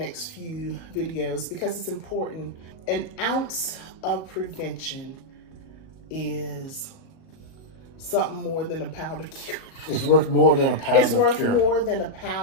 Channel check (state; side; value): late; right; 38 ms